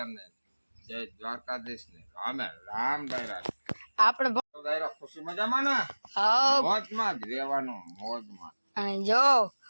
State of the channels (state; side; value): inverted; both; correlation -1.00